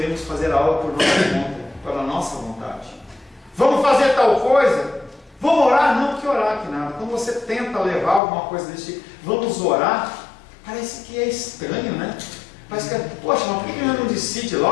fazer algo por nossa conta, pela nossa vontade. Vamos fazer tal coisa? Vamos orar? Não, que orar que nada. Quando você tenta levar alguma coisa desse tipo, vamos orar, parece que é estranho, né? Parece que é, poxa, mas por que não decide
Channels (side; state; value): right; drops out; at 8.2 s